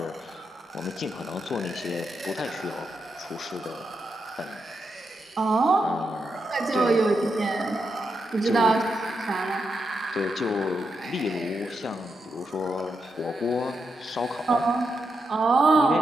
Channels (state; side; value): normal; both; correlation 0.84